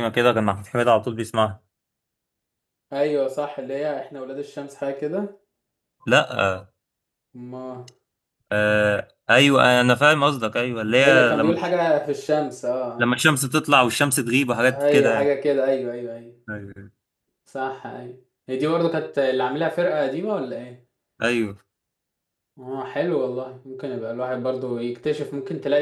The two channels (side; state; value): both; identical; correlation 1.00